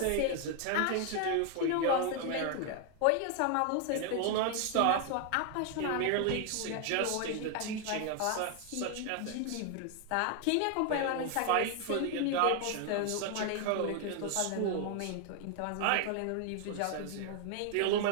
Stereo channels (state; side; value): different; both; correlation 0.00